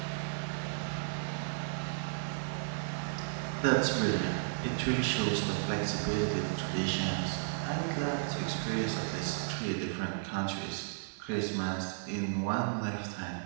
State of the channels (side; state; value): left; silent; digital silence